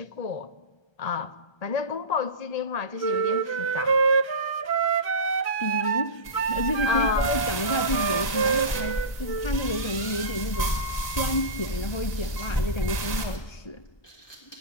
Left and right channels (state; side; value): late; right; 1.2 ms